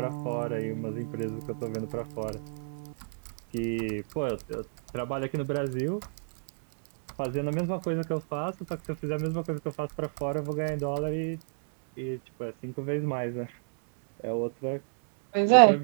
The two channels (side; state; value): left; silent; digital silence